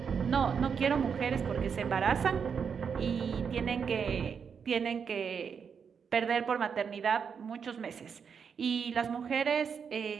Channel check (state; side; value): quieter; left; 6.6 dB